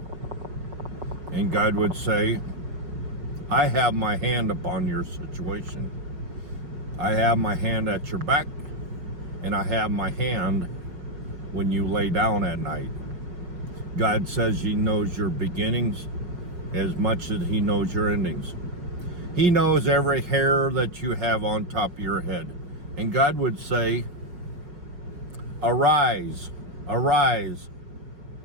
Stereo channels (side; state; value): left; late; 5.5 ms